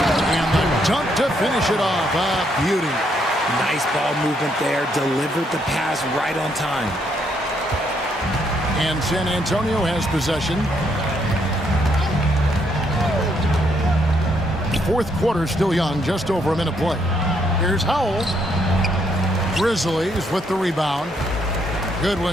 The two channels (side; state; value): both; normal; correlation 0.73